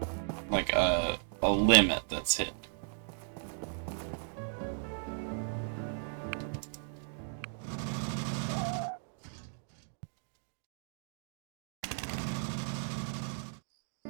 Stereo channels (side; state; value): left; silent; digital silence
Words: like a limit that's hit.